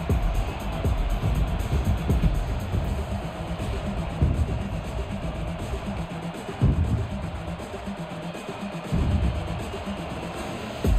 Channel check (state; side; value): identical; both; correlation 1.00